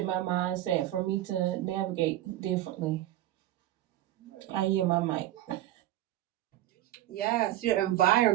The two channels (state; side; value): quieter; left; 14.4 dB